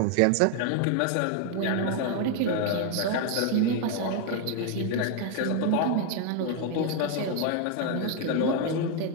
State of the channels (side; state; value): both; different; correlation 0.01